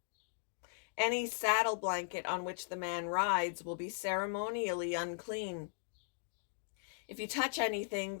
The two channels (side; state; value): right; silent; digital silence